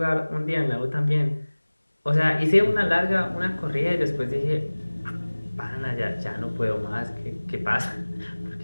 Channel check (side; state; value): both; inverted; correlation -1.00